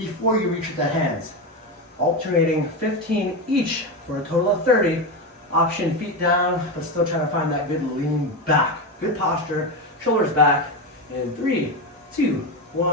you reach the hands. Alternating 15 each for a total of 30. Option feet down, but still trying to find that good lean back. Good posture, shoulders back. In 3, 2,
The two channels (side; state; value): both; normal; correlation 0.15